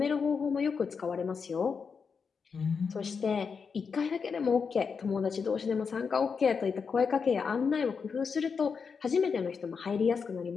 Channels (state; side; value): quieter; right; 5.7 dB